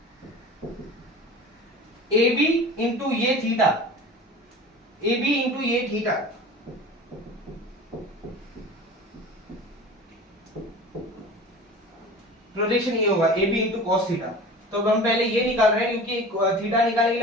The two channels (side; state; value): both; normal; correlation 0.38